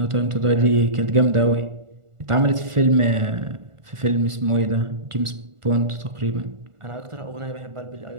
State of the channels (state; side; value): late; left; 1.4 ms